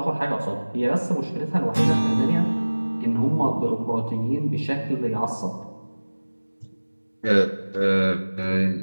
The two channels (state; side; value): inverted; both; correlation -1.00